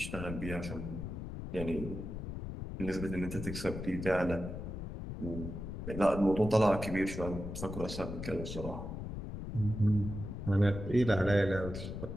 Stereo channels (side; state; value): left; noise; rumble, 7 dB below the sound